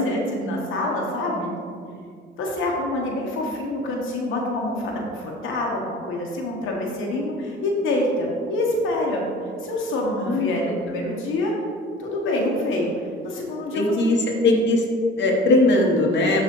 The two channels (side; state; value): both; normal; correlation 0.41